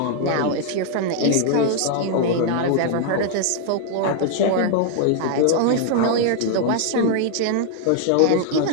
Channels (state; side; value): different; both; correlation 0.00